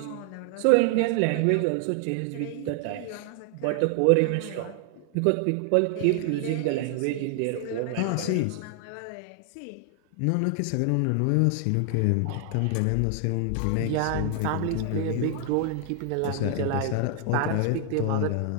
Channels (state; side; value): different; both; correlation 0.00